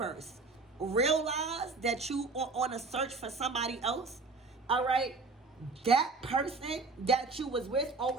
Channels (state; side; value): quieter; left; 3.9 dB